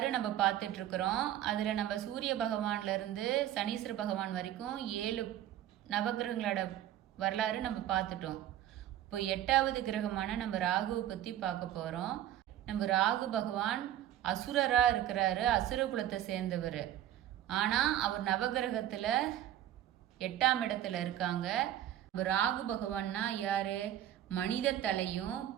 நம்ம பார்த்துட்ருக்குறோம். அதில் நம்ம சூரிய பகவான்லேருந்து சனீஸ்வர பகவான் வரைக்கும் 7 நவகிரகங்களோட வரலாறு நம்ம பார்த்துட்டோம். இப்போ 8வது கிரகமான நம்ம ராகுவை பற்றி பார்க்க போகிறோம். நம்ம ராகு பகவான் அசுரராக இருக்கிறாரு, அசுர குலத்தை சேர்ந்தவர். ஆனால் அவர் நவகிரகத்தில் 8ஆம் இடத்துல இருக்காங்க. ராகு பகவான்னா யாரு? மனித தலையும்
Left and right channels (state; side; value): quieter; left; 12.0 dB